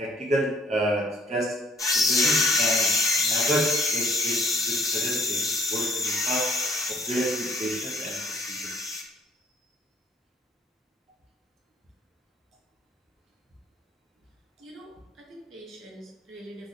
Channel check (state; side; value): normal; both; correlation 0.62